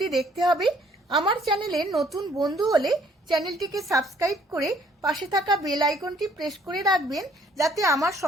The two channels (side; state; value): both; normal; correlation 0.62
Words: দেখতে হবে। আমার চ্যানেলে নতুন বন্ধু হলে চ্যানেলটিকে সাবস্ক্রাইব করে পাশে থাকা বেল আইকনটি প্রেস করে রাখবেন, যাতে আমার